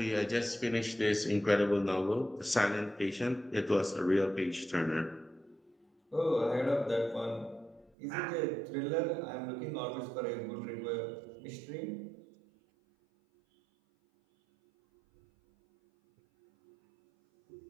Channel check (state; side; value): drops out; left; at 8.0 s